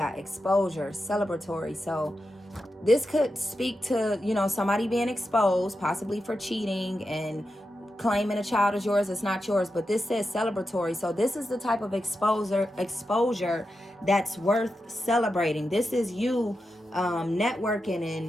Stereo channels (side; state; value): both; normal; correlation 0.89